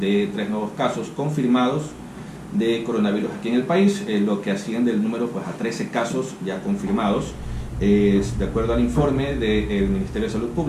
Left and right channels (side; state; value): both; identical; correlation 1.00